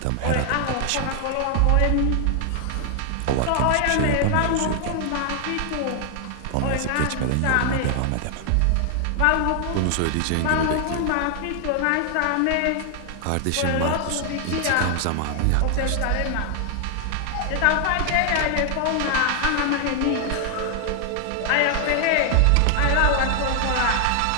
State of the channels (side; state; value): both; different; correlation 0.00